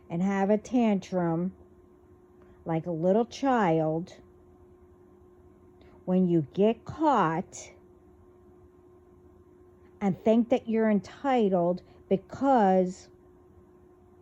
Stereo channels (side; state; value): both; identical; correlation 1.00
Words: and have a tantrum like a little child when you get caught and think that you're entitled because,